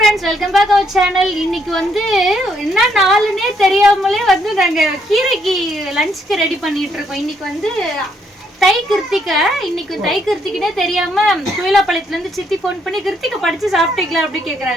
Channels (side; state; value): both; normal; correlation 0.73